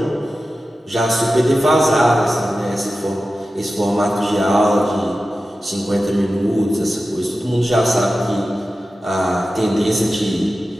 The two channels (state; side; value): normal; both; correlation 0.94